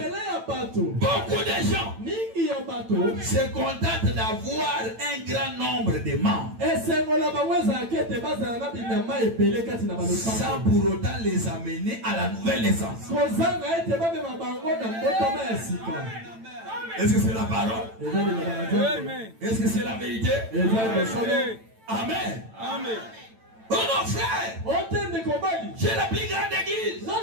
Beaucoup de gens se contentent d'avoir un grand nombre de membres sans pour autant les amener à la nouvelle naissance. Est-ce que c'est la parole? Est-ce que c'est la vérité? Amen. Amen. Oh mon frère, j'ai la plus grande église.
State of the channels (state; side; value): late; left; 9.0 ms